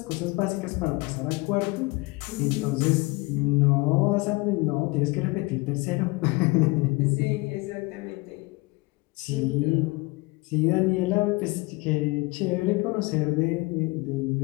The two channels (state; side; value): quieter; right; 24.8 dB